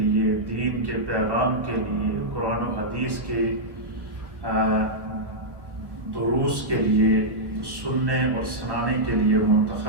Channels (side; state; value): left; late; 1.4 ms